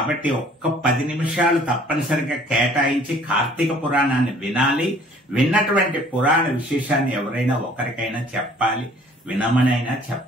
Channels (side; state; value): both; normal; correlation 0.54